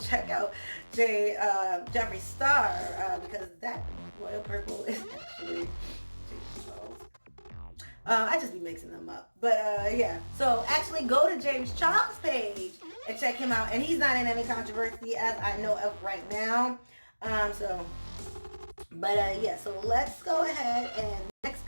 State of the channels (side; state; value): both; inverted; correlation -1.00